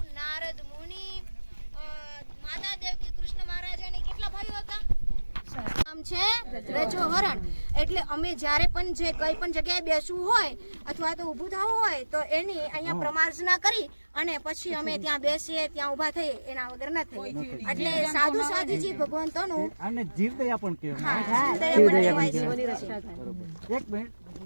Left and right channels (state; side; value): inverted; both; correlation -1.00